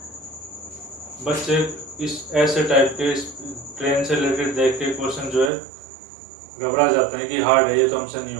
बच्चे इस ऐसे टाइप के ट्रेन से रिलेटेड देख के क्वेश्चन जो है घबरा जाते हैं कि हार्ड है, ये तो हमसे नहीं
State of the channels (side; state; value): left; drops out; at 5.5 s